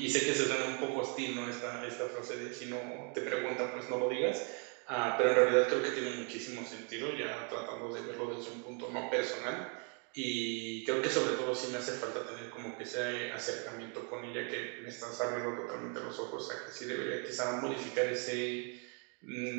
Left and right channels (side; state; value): left; quieter; 38.6 dB